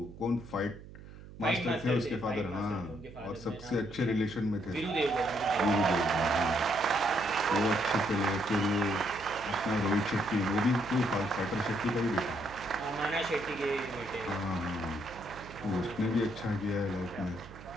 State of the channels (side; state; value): right; noise; hum, 16 dB below the sound